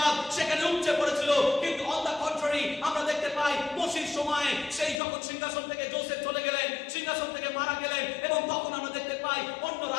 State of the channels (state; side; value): drops out; right; at 5.0 s